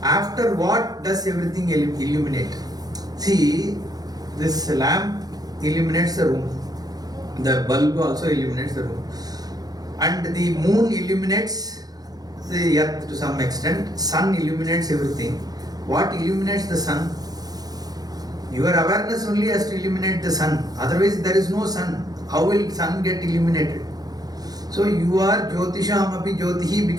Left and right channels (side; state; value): left; late; 0.19 ms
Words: After what does everything illuminate? See, this lamp illuminates the room. The bulb also illuminates the room. And the moon illuminates the earth to some extent. Sun illuminates everything. What illuminates the sun? Your awareness only has to illuminate the sun. Otherwise, there is no sun. How will sun get illuminated? So you are Jyotishamapi Jyotihi